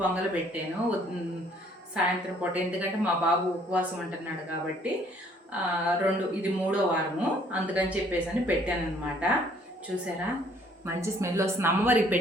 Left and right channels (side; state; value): both; normal; correlation 0.61